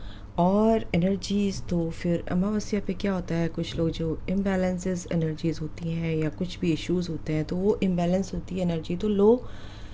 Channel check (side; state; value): both; identical; correlation 1.00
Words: और एनर्जीज़ तो फिर अमावस्या पे क्या होता है, कुछ लोग जो इम्बैलेंसेस एनर्जीज़ होती हैं या कुछ भी इश्यूज़ होते हैं तो वो इम्बैलेंस होती है एनर्जी, तो लो